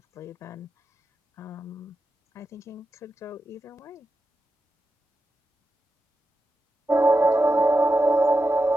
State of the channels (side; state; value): both; normal; correlation 0.90